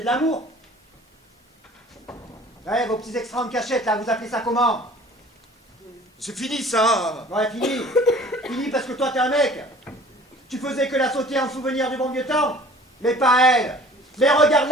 de l'amour. Ouais, vos petits extras en cachette, là, vous appelez ça comment? C'est fini ça. Ouais, fini. Fini parce que toi, t'es un mec. Tu faisais que la sauter en souvenir du bon vieux temps. Mais pas elle. Mais regarde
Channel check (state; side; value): normal; both; correlation 0.48